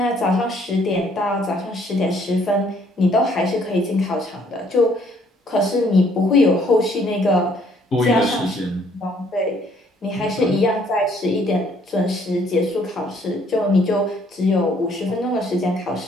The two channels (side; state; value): both; normal; correlation 0.64